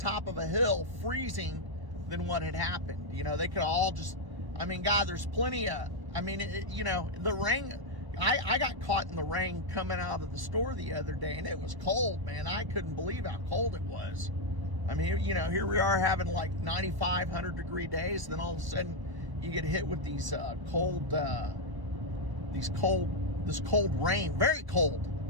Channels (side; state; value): left; late; 1.0 ms